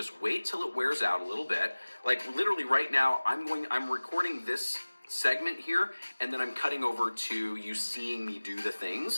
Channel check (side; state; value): both; inverted; correlation -1.00